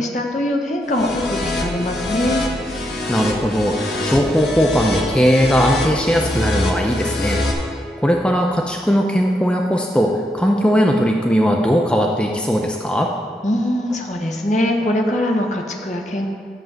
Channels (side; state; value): both; normal; correlation 0.81